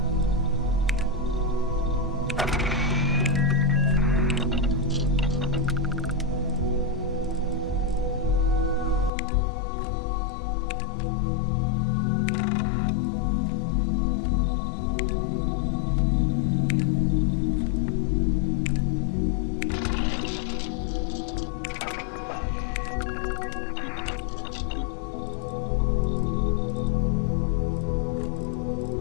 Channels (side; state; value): right; drops out; at 9.1 s